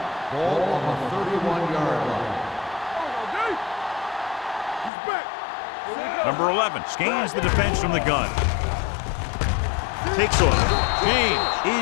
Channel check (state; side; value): drops out; right; at 4.9 s